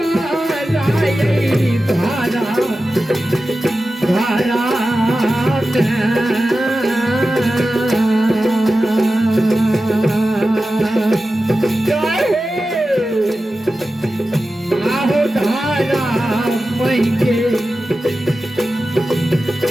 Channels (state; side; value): normal; both; correlation 0.93